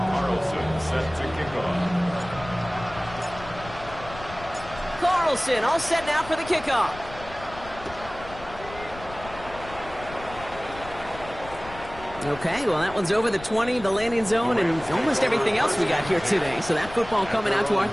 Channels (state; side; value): noise; left; rumble, 15 dB below the sound